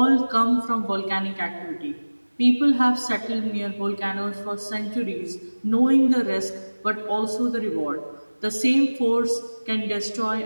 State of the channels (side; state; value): both; inverted; correlation -1.00